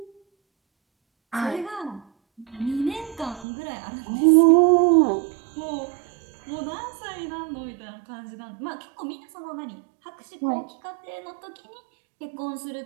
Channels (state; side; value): drops out; left; at 3.5 s